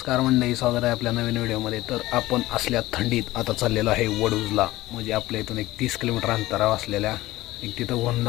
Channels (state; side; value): quieter; right; 17.5 dB